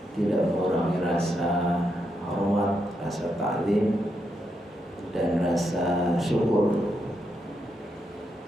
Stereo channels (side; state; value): both; normal; correlation 0.82